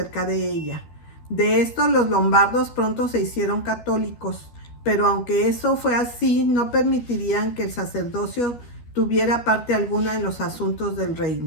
de ella. De esto los lombardos pronto se hicieron católicos, pero aunque eso fue así, no permitirían que el sacerdocio tuviera parte alguna en los asuntos del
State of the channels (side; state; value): right; late; 12 ms